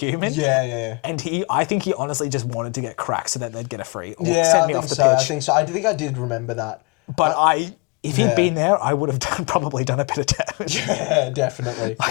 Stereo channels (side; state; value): right; quieter; 30.8 dB